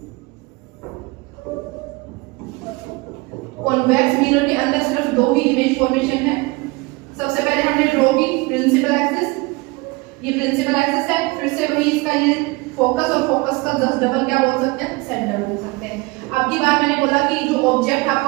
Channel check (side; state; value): left; quieter; 24.7 dB